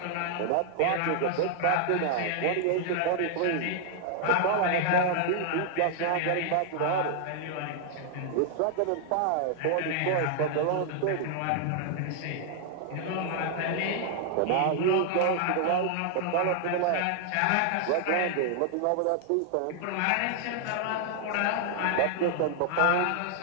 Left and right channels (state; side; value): different; both; correlation -0.01